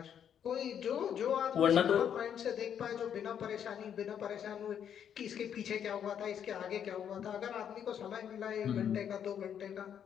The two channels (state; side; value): quieter; right; 8.8 dB